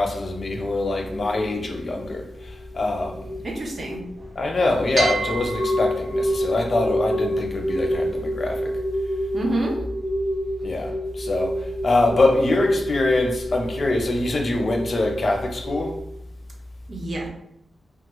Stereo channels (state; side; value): normal; both; correlation 0.91